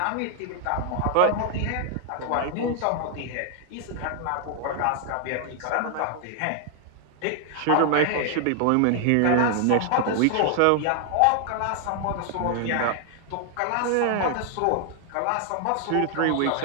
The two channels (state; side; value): different; both; correlation 0.00